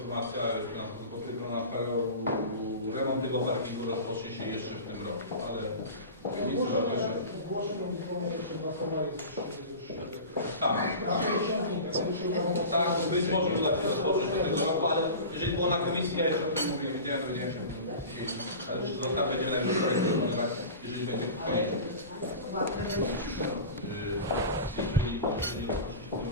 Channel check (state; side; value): inverted; both; correlation -0.33